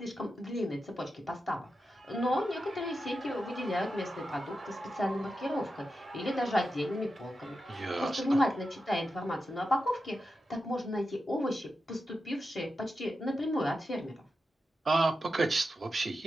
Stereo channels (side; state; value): both; normal; correlation 0.89